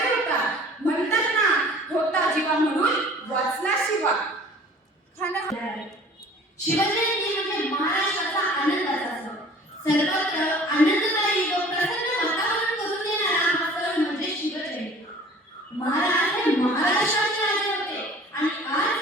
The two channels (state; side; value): normal; both; correlation 0.48